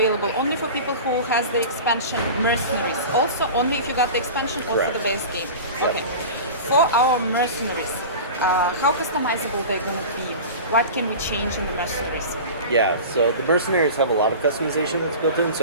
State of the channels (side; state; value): both; inverted; correlation -0.34